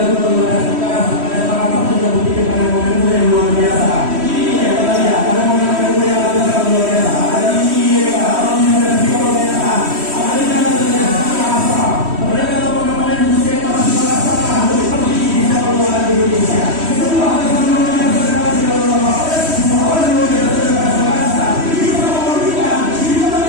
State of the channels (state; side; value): late; left; 3.1 ms